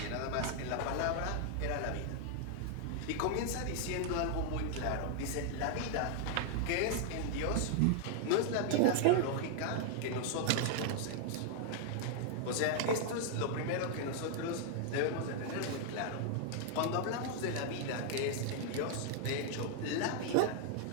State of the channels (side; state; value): both; different; correlation 0.00